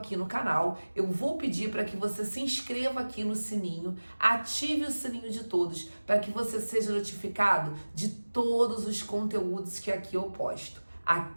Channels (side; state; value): both; inverted; correlation -1.00